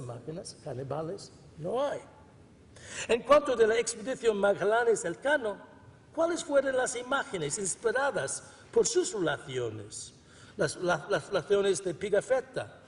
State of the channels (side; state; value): both; identical; correlation 1.00